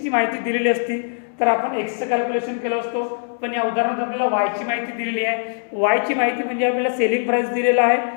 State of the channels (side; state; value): right; silent; 65 dB below the other